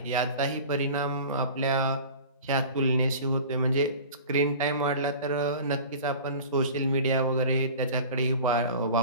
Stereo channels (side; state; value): both; inverted; correlation -0.39